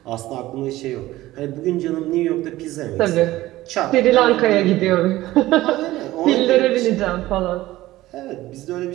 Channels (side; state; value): left; quieter; 16.6 dB